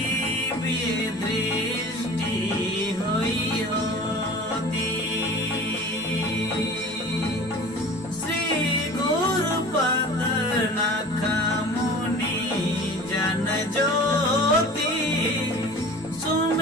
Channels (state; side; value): normal; both; correlation 0.40